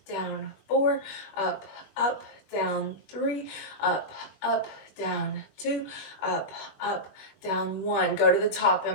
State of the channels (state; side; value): late; right; 20 ms